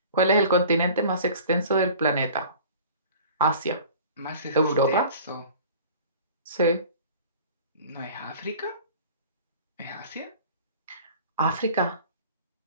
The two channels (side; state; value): both; inverted; correlation -0.44